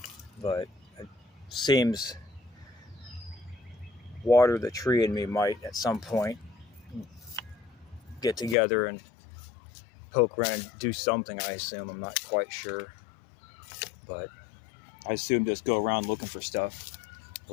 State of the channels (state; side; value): drops out; right; at 8.6 s